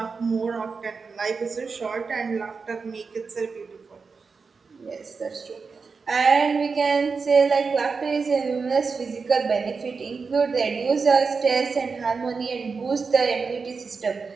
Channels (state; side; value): quieter; left; 4.9 dB